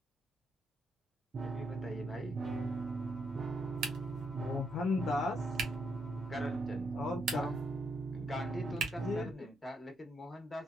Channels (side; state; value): both; normal; correlation 0.77